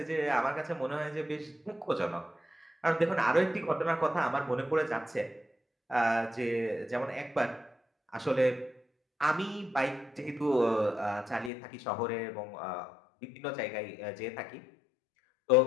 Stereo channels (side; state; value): right; drops out; at 11.5 s